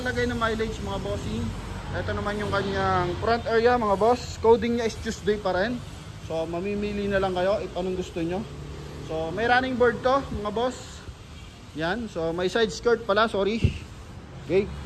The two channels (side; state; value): both; identical; correlation 1.00